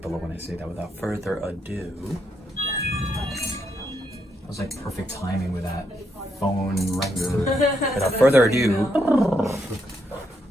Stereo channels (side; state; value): both; normal; correlation 0.78